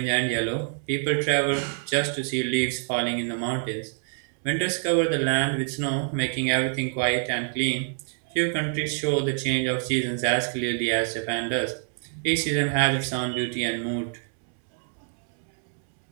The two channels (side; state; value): left; silent; 61 dB below the other